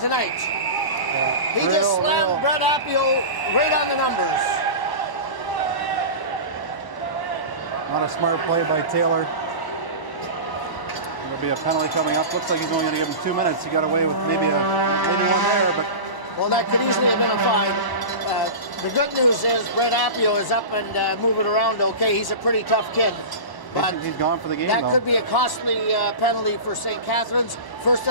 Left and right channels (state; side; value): late; right; 1.0 ms